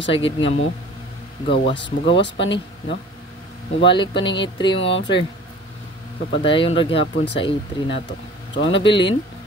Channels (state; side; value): normal; both; correlation 0.44